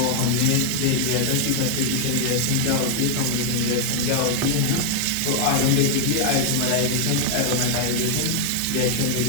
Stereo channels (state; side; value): different; both; correlation 0.00